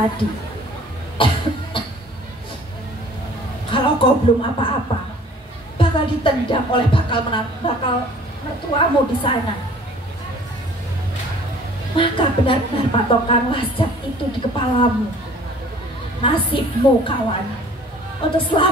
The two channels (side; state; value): both; normal; correlation 0.51